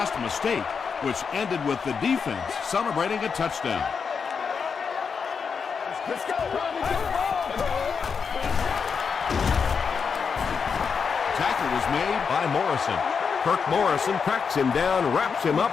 mistake, which ended with the defense celebrating a touchdown. Let's go. Tackle was made By Morrison. Kirk Morrison cracks him down, wraps him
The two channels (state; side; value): quieter; right; 5.9 dB